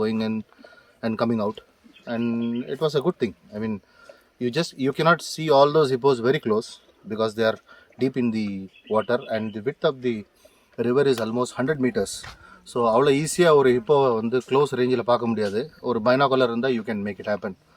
going in and coming out, and it was a good thing. I mean, you cannot see all those hippos very close because they are deep in the water, and the width of the river is almost 100 meters. So அவ்வளோ ஈஸியாக ஒரு ஹிப்போவை வந்து close ரேஞ்சில் பார்க்க முடியாது. ஒரு binocular இருந்தால் you can make it happen.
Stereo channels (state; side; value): identical; both; correlation 1.00